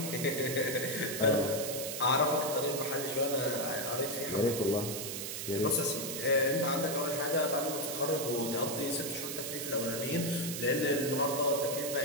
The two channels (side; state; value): right; noise; hiss, 5 dB below the sound